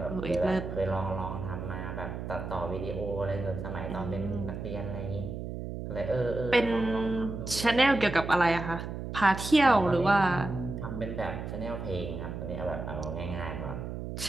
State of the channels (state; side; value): noise; right; hum, 6 dB below the sound